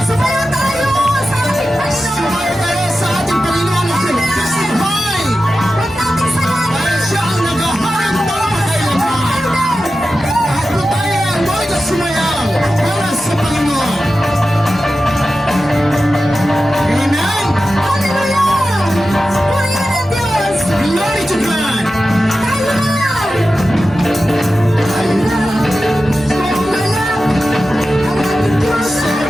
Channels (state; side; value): normal; both; correlation 0.93